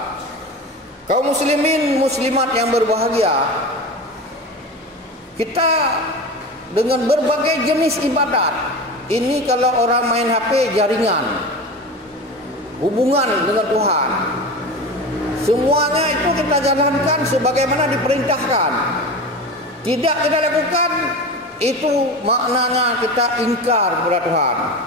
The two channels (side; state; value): both; normal; correlation 0.28